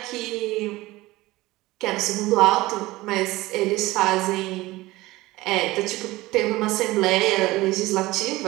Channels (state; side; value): quieter; left; 19.2 dB